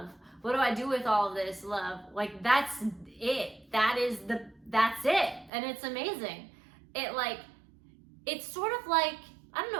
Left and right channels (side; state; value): left; drops out; at 5.5 s